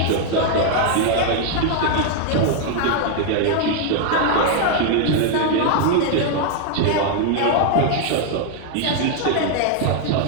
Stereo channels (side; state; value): both; different; correlation 0.00